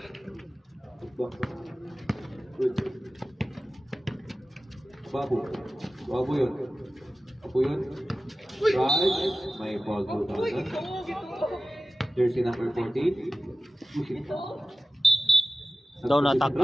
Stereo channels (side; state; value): both; normal; correlation 0.96